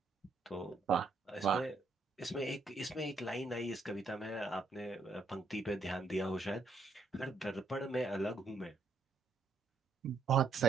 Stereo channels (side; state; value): left; quieter; 3.5 dB